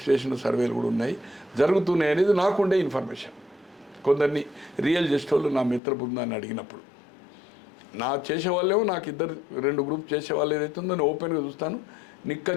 చేసిన సర్వేలు కూడా ఉన్నాయి, జరుగుతున్నాయి అనేది నాకుండే ఇన్ఫర్మేషన్. కొందరిని రియల్ చేసేవాళ్ళు నా మిత్ర బృందాన్ని అడిగినప్పుడు, నా చేసేవాళ్ళేమో నాకు 2 గ్రూప్ చేసేవాళ్ళు ఏదైతుందో నేను ఓపెన్గా చూస్తాను,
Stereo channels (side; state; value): right; drops out; at 5.8 s